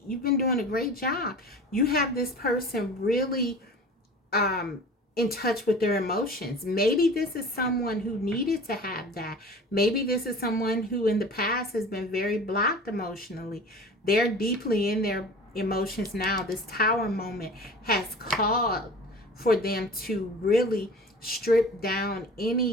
You've been doing a great job. You have this person really in touch with their emotions. Maybe this is someone who needed to have that. Maybe this is someone who in the past has been very blocked emotionally. They're deeply in their emotions now. This Tower moment has called for them to really strip down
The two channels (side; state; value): both; normal; correlation 0.40